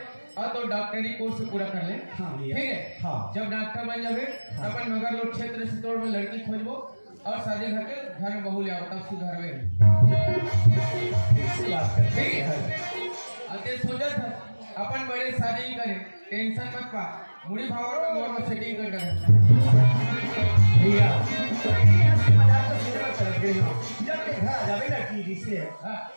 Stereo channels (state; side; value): inverted; both; correlation -1.00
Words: और तो डॉक्टरी कोर्स पूरा कर ले। हाँ भैया। ठीक है। हाँ। जब डॉक्टर बन जावे हाँ। अपन मगर लोग क्षेत्र से तोड़ में लड़की खोजबो और शादी करके घर में बहू ले आओ, तब सुधर में ठीक है। अब ते सोचा था अपन बड़े शादी ही करे, टेंशन मत पा, मुड़ी भावर में मोर में सेटिंग कर कर भैया मजाक तो सीधे मत चल गए हो, जब ते घर आ जावे ना टीवी से